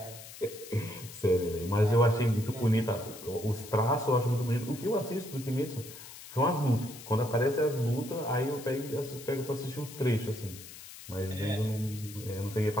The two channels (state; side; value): noise; left; hiss, 15 dB below the sound